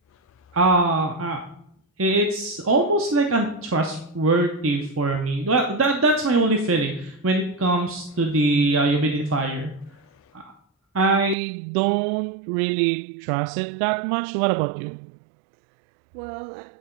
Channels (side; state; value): left; drops out; at 11.4 s